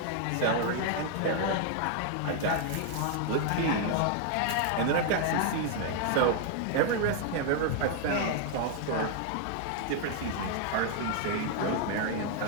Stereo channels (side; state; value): both; different; correlation 0.00